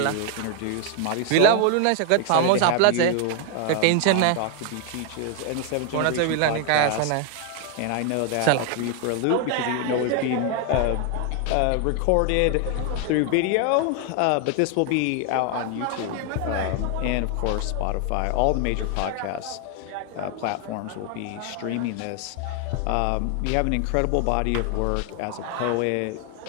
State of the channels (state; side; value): different; both; correlation 0.01